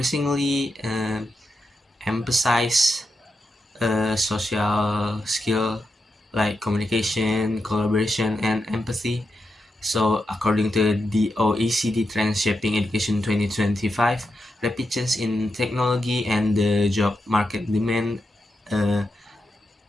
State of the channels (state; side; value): normal; both; correlation 0.87